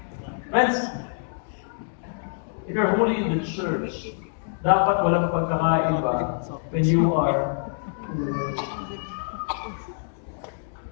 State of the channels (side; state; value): right; silent; digital silence